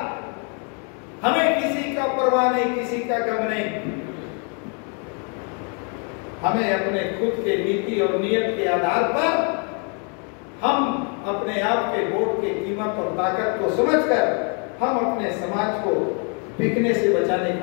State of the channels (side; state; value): right; quieter; 38.8 dB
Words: हमें किसी का परवाह नहीं, किसी का गम नहीं। हमें अपने खुद के नीति और नियत के आधार पर हम अपने आप के वोट की कीमत और ताकत को समझकर हम अपने समाज को बिकने से बचाने